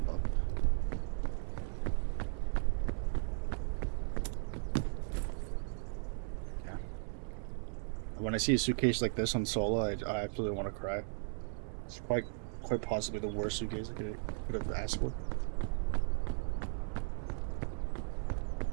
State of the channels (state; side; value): silent; left; 53 dB below the other